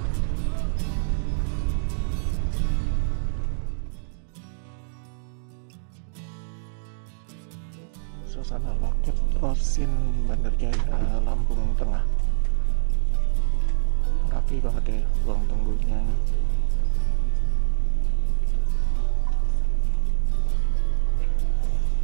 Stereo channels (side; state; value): left; silent; digital silence